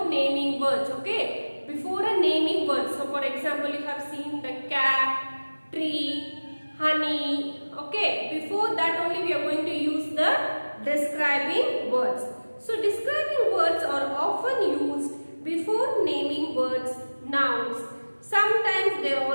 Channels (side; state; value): both; inverted; correlation -1.00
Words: naming words. Okay? Before a naming word. So for example, you have seen the cat, tree, honey. Okay? Before that only we are going to use the describing words. So describing words are often used before naming words, nouns. Sometimes they are